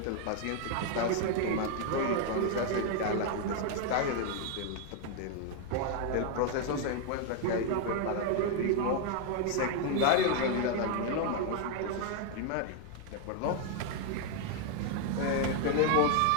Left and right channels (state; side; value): different; both; correlation 0.01